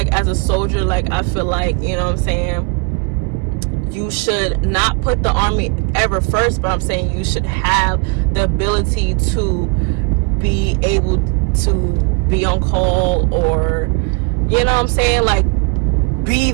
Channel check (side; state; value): left; quieter; 30.4 dB